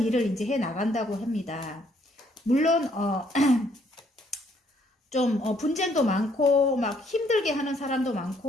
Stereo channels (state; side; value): normal; both; correlation 0.67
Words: 일을 이제 해 나간다고 합니다. 물론 좀 분쟁도 많고 막 힘들게 하는 사람도